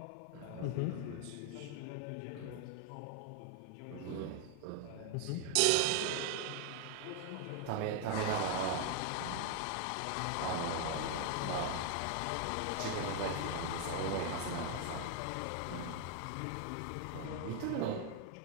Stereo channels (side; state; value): both; different; correlation 0.00